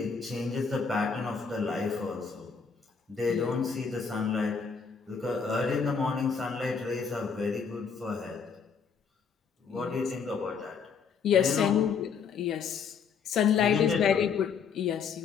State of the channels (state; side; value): quieter; right; 6.0 dB